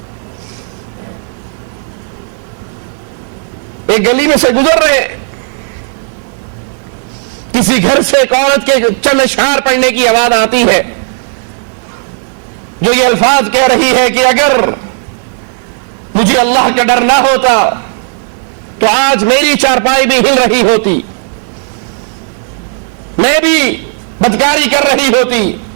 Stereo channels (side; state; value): left; silent; digital silence